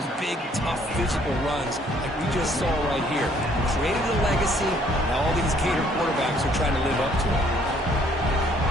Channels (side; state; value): both; normal; correlation 0.63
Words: big, tough, physical runs like we just saw right here. Created a legacy, and all these Gator quarterbacks are trying to live up to it.